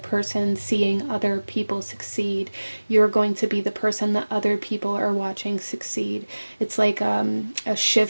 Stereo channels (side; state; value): both; inverted; correlation -1.00